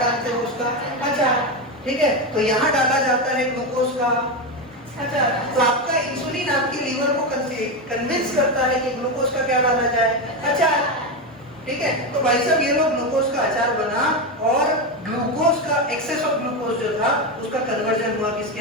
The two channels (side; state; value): both; normal; correlation 0.13